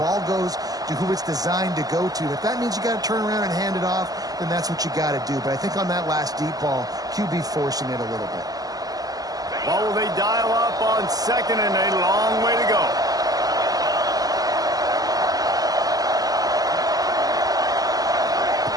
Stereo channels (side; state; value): left; late; 0.18 ms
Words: goes to who it's designed to go to. If that means you got to turn around and hand it off, then that's what you got to do. But I think on that last deep ball, QB forcing it a little bit. Well, will they dial up on second and a long way to go?